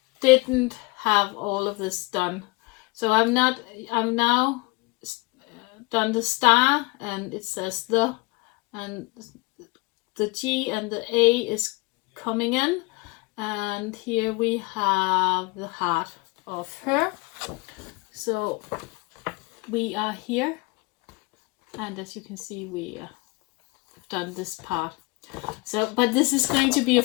didn't have all of this done. So I'm now done the star, and it says the, and the G and the A is coming in, and here we have the heart of her. So we are here, and as you can see, we have done this part. So, but this is going to be a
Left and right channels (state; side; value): quieter; right; 25.0 dB